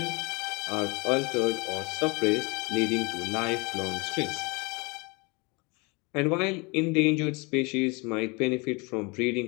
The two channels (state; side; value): quieter; right; 28.2 dB